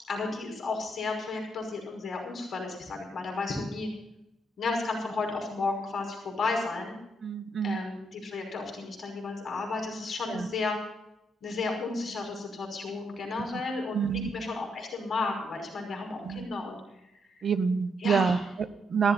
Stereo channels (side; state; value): both; normal; correlation 0.76